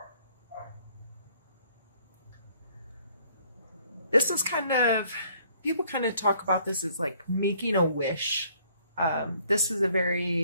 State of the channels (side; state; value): both; inverted; correlation -0.62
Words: This is kind of, people kind of talk about this as like making a wish. This is a